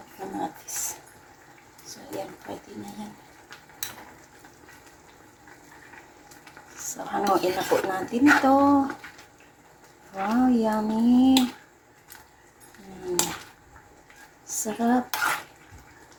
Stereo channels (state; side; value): identical; both; correlation 1.00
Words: kamatis. So yan, pwede na yan. So, hanguin na po natin ito. Wow, yummy. Sarap.